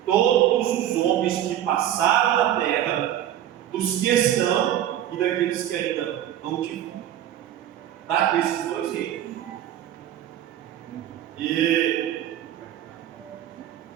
todos os homens que passaram na terra, dos que estão e daqueles que ainda não tiveram. Tá? Desses dois reinos. E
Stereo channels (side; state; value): left; quieter; 11.5 dB